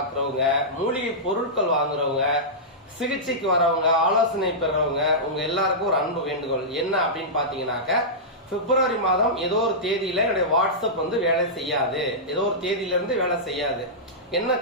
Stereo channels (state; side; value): normal; both; correlation -0.13